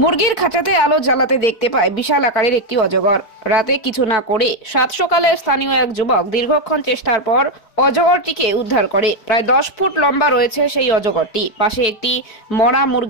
মুরগির খাঁচাতে আলো জ্বালাতে দেখতে পায় বিশাল আকারের একটি অজগর। রাতে কিছু না করে সাত সকালে স্থানীয় এক যুবক দীর্ঘক্ষণ চেষ্টার পর অজগরটিকে উদ্ধার করে। প্রায় 10 ফুট লম্বা রয়েছে সেই অজগরটি। পাশে একটি মরা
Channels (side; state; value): right; late; 4.6 ms